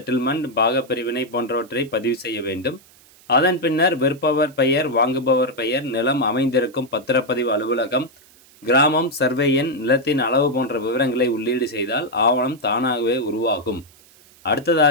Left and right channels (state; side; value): noise; right; hiss, 27 dB below the sound